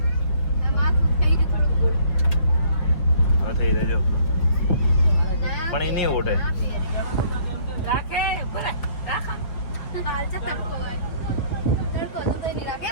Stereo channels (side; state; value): right; late; 5.9 ms